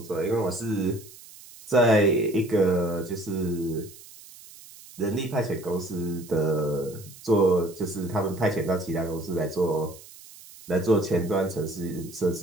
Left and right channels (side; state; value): right; noise; hiss, 19 dB below the sound